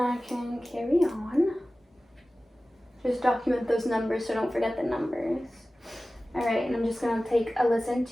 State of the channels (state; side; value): normal; both; correlation 0.96